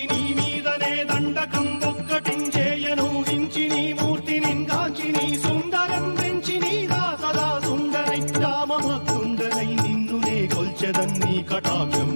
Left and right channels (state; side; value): inverted; both; correlation -1.00